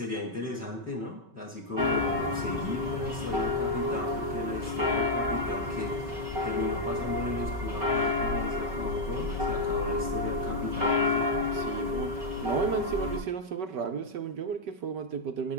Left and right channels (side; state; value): left; late; 5.3 ms